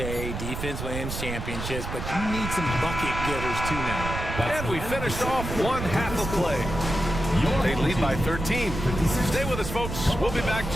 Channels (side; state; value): right; noise; rumble, 6 dB below the sound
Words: defense wins championships, but you need some bucket getters too now. And we finished off one half of play. They lead by 13. Stay with us, folks. We'll be back